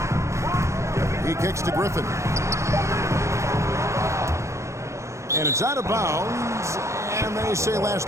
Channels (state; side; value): late; left; 0.14 ms